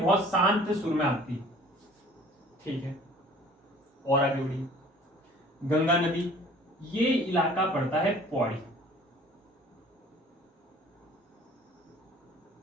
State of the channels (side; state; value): both; normal; correlation 0.50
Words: शांत सुर में आती है। ठीक है, और आगे बढ़िए। गंगा नदी, ये इलाका पड़ता है पौड़ी।